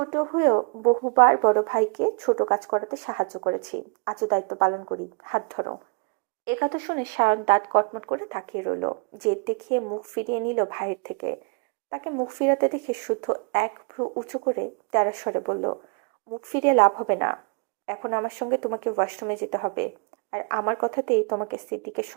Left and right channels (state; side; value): quieter; left; 34.5 dB